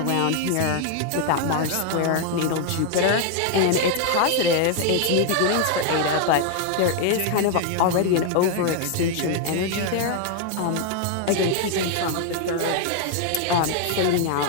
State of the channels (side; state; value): both; different; correlation 0.00